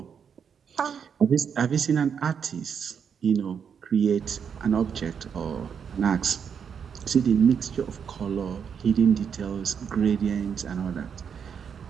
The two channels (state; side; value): quieter; left; 7.2 dB